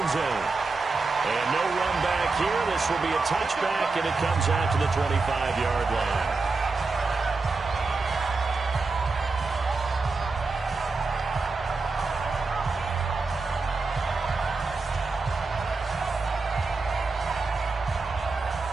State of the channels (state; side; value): quieter; left; 4.0 dB